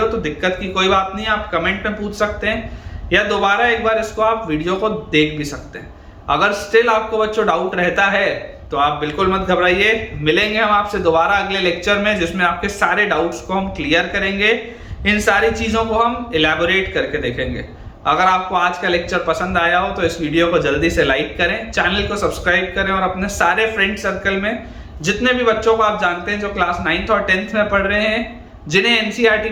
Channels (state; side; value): identical; both; correlation 1.00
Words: तो दिक्कत की कोई बात नहीं, आप कमेंट में पूछ सकते हैं या दोबारा एक बार इसको आप वीडियो को देख भी सकते हैं। अगर स्टिल आपको बच्चों डाउट रहता है तो आप बिल्कुल मत घबराइए, मिलेंगे हम आपसे दोबारा अगले लेक्चर में जिसमें आपके सारे डाउट्स को हम क्लियर करेंगे, इन सारी चीजों को हम इलैबोरेट करके देखेंगे। अगर आपको आज का लेक्चर पसंद आया हो तो इस वीडियो को जल्दी से लाइक करें, चैनल को सब्सक्राइब करें और अपने सारे फ्रेंड सर्कल में जितने भी बच्चों को आप जानते हैं जो क्लास 9th और 10th में पढ़ रहे हैं, जिन्हें एनसीईआरटी